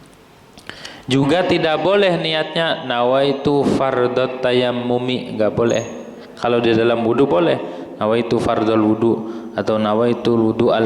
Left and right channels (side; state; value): both; identical; correlation 1.00